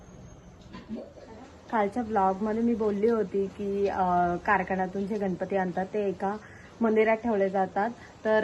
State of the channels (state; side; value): identical; both; correlation 1.00